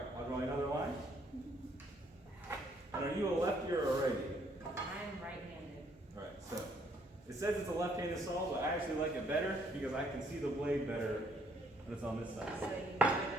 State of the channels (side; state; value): both; normal; correlation 0.67